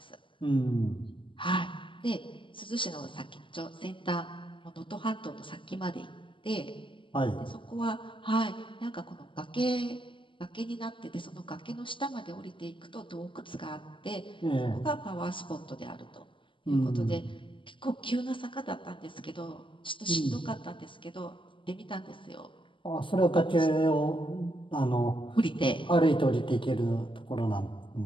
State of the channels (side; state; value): right; late; 0.25 ms